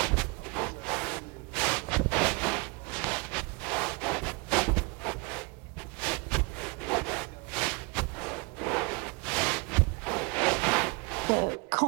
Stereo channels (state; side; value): quieter; left; 29.3 dB